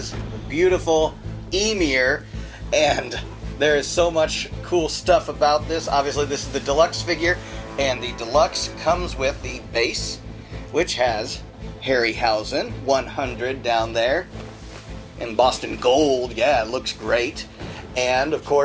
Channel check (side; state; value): both; identical; correlation 1.00